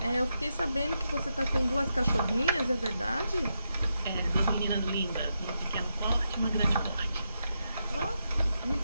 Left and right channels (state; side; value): inverted; both; correlation -0.85